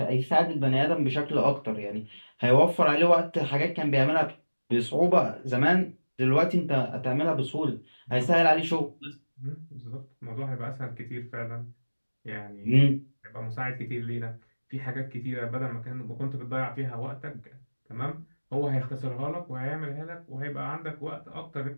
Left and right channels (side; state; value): both; inverted; correlation -1.00